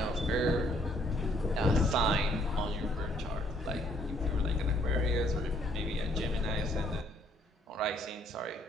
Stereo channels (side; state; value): both; normal; correlation 0.65